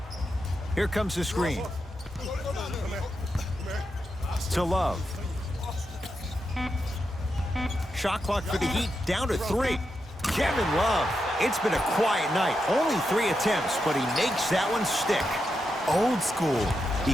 Here comes the screen. To Love. Shot clock for the Heat down to 3. Kevin Love. It's been a quiet night. Only 3 attempts, but he makes that one stick. Old school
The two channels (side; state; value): both; normal; correlation 0.86